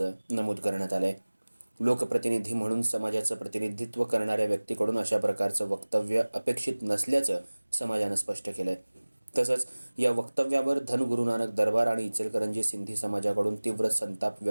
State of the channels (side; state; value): both; inverted; correlation -1.00